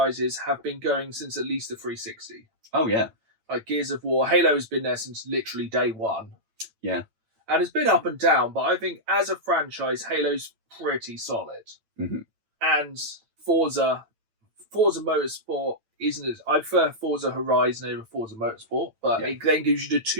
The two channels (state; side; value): late; left; 8.9 ms